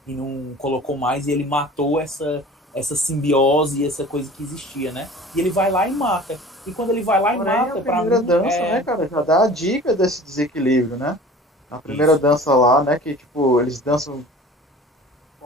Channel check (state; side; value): normal; both; correlation 0.43